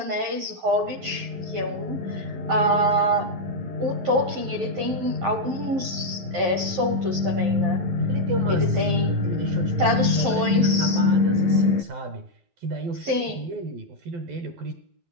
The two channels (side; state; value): left; late; 11 ms